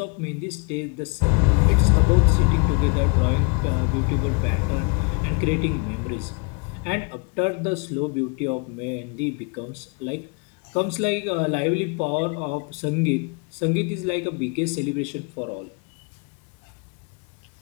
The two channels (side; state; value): right; quieter; 32.5 dB